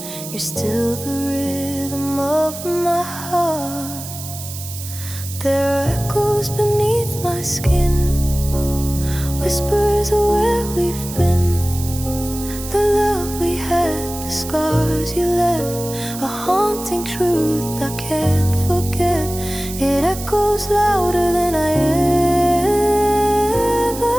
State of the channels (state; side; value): noise; right; hiss, 11 dB below the sound